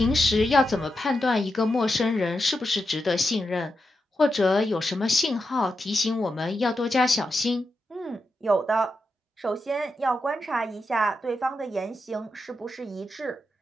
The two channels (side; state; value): both; normal; correlation 0.87